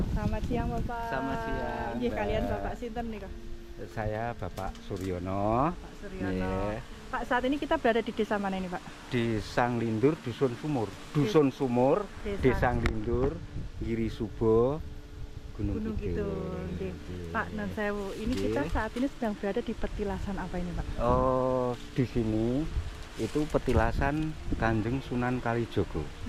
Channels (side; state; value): both; identical; correlation 1.00